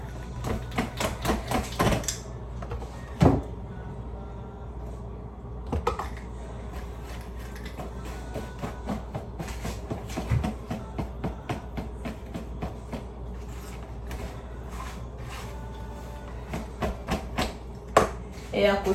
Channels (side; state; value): both; identical; correlation 1.00